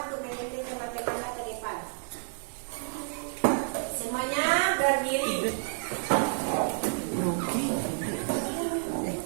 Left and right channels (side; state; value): left; silent; digital silence